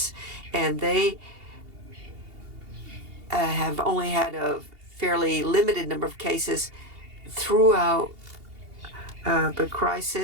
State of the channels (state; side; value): late; left; 2.8 ms